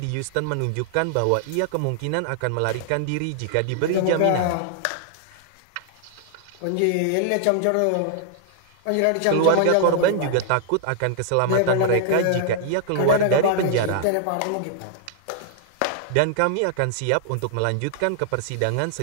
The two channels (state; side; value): different; both; correlation -0.01